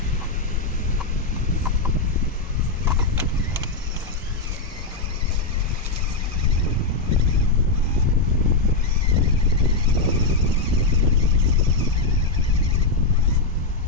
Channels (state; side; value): quieter; right; 3.5 dB